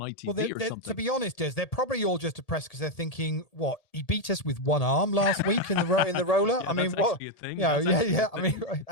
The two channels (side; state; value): right; late; 1.8 ms